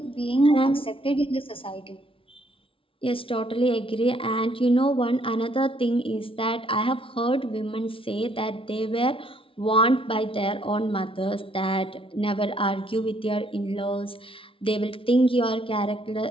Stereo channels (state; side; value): late; right; 0.26 ms